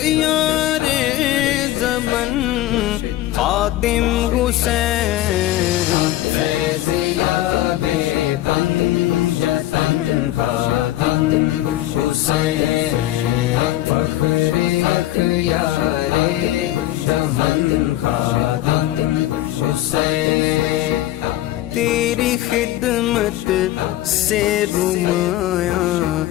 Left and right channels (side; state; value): right; quieter; 14.7 dB